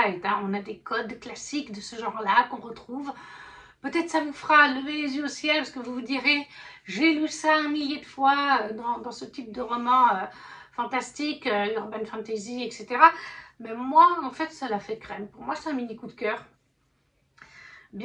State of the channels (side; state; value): both; identical; correlation 1.00